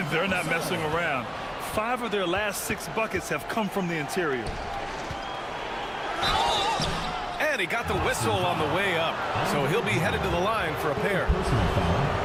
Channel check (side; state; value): both; identical; correlation 1.00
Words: They're not messing around. 5 of their last 6 buckets have come from the interior. And he got the whistle on the way up. So he'll be headed to the line for a pair.